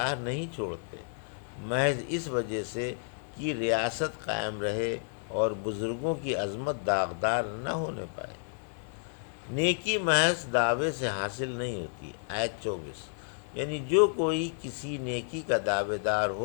نہیں چھوڑتے، محض اس وجہ سے کہ ریاست قائم رہے اور بزرگوں کی عظمت داغدار نہ ہونے پائے۔ نیکی محض دعوے سے حاصل نہیں ہوتی، آیت 24، یعنی جو کوئی کسی نیکی کا دعوے دار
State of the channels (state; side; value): silent; right; digital silence